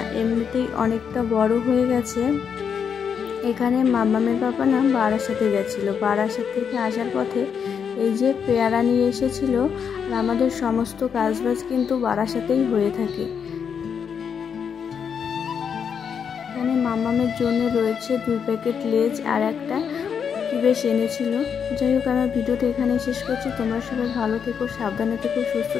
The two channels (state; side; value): quieter; right; 7.1 dB